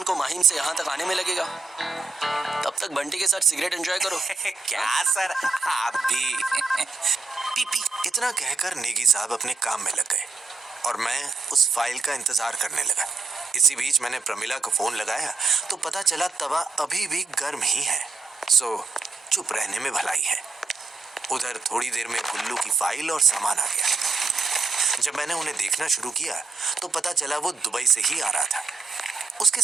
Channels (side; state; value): left; quieter; 3.8 dB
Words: को माहिम से यहाँ तक आने में लगेगा, तब तक बंटी के साथ सिगरेट एंजॉय करो। क्या सर, आप भी? पीपी। इतना कहकर नेगी साहब अपने काम में लग गए और मैं उस फाइल का इंतजार करने लगा। इसी बीच मैंने प्रमिला को फोन लगाया तो पता चला तवा अभी भी गर्म ही है, सो चुप रहने में भलाई है। उधर थोड़ी देर में गुल्लू की फाइल और सामान आ गया। जब मैंने उन्हें देखना शुरू किया तो पता चला वो दुबई से ही आ रहा था। उसके